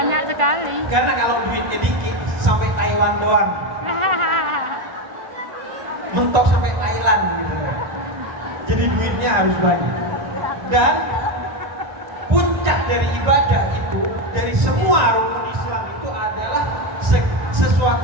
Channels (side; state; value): left; late; 1.9 ms